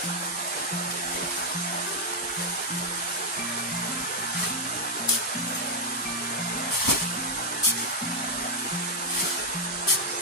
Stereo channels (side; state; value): both; normal; correlation 0.00